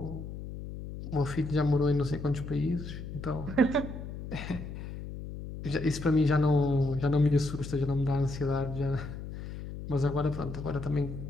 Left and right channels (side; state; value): left; noise; hum, 9 dB below the sound